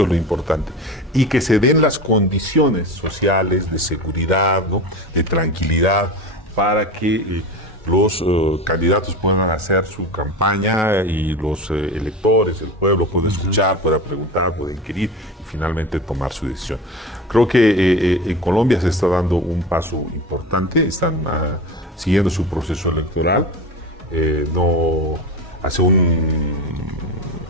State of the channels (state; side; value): normal; both; correlation 0.28